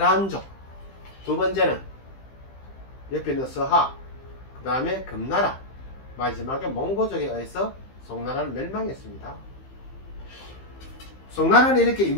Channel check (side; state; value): right; late; 15 ms